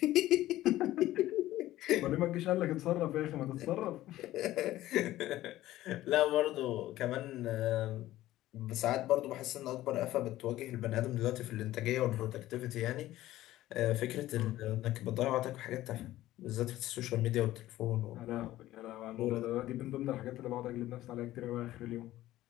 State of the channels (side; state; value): right; quieter; 15.2 dB